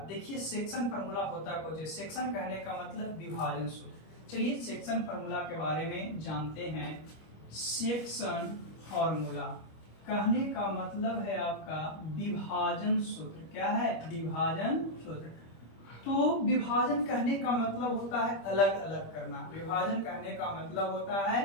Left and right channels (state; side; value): late; right; 25 ms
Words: देखिए सेक्शन फार्मूला होता कुछ है, सेक्शन कहने का मतलब विभाजन सूत्र। चलिए सेक्शन फार्मूला के बारे में जानते हैं। सेक्शन फार्मूला कहने का मतलब है आपका विभाजन सूत्र। क्या है? विभाजन सूत्र। तो विभाजन कहने का मतलब होता है अलग अलग करना। विभाजन कहने का मतलब होता है